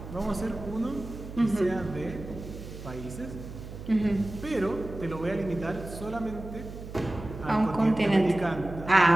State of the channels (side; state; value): right; noise; hum, 12 dB below the sound